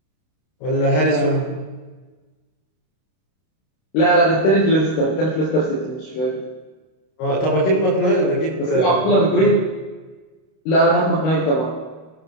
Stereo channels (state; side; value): late; right; 32 ms